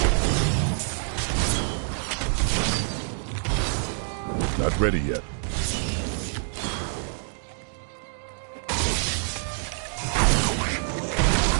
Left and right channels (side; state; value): left; silent; 61 dB below the other